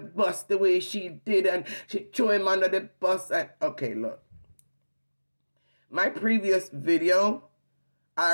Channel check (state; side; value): inverted; both; correlation -1.00